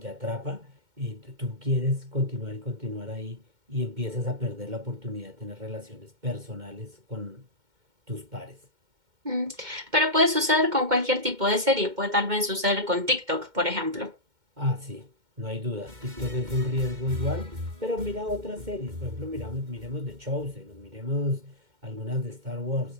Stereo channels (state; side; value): late; left; 2.1 ms